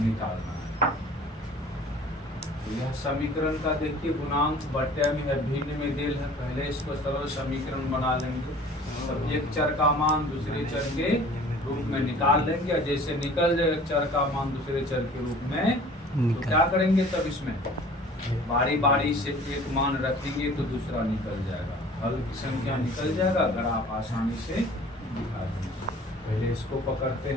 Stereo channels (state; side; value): normal; both; correlation 0.48